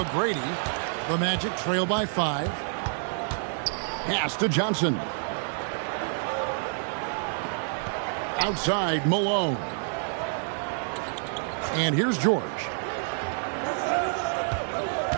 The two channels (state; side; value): silent; left; 59 dB below the other